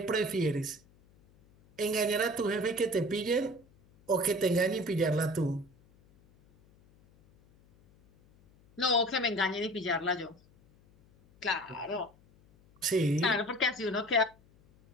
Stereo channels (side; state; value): left; noise; hum, 29 dB below the sound